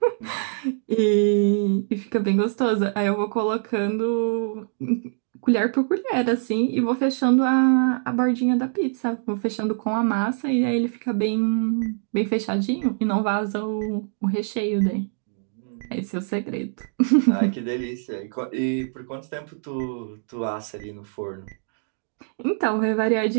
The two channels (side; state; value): left; silent; digital silence